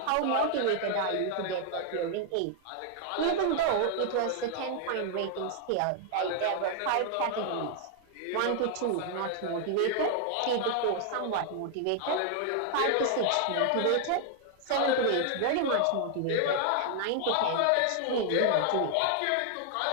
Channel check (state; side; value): different; both; correlation 0.00